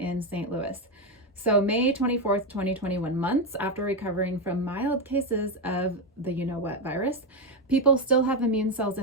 St. Louis. So May 24th, 2021, months after recovering from mild cases of the you-know-what virus, people still have immune cells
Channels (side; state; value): both; normal; correlation 0.08